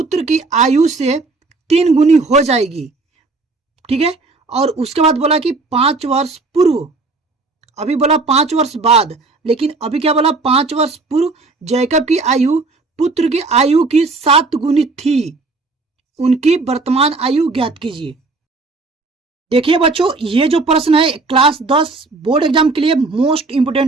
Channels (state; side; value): quieter; left; 3.7 dB